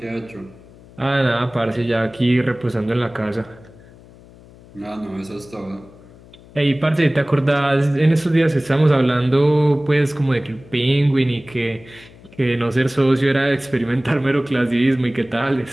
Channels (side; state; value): left; noise; hum, 23 dB below the sound